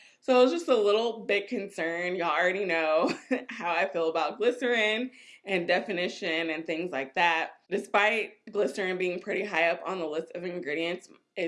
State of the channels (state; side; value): identical; both; correlation 1.00